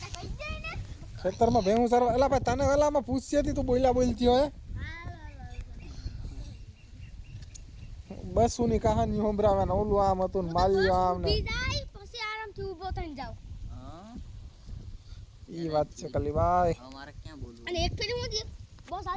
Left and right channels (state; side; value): identical; both; correlation 1.00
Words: ખેતરમાં ભેહું સારવા એલા ભાઈ તને વેલામાં પૂછતી હતી તું બોલ્યા બોલતી હોય બસ ની કહાની સંભળાવે ને ઓલું આમ હતું ને માલ્યું આમ ને પછી આરામથી ઊભો થઈને જાવ ઈ વાત છે કલીભાઈ અમારે ક્યાં બોલવું અને એક ફેરી હું બસ